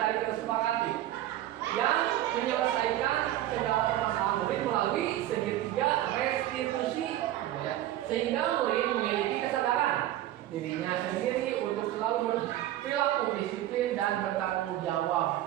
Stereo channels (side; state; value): left; quieter; 13.6 dB